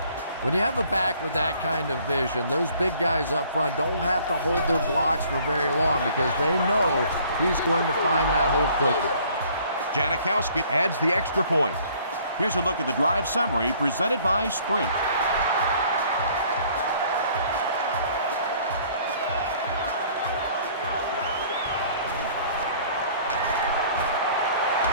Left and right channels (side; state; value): both; inverted; correlation -0.57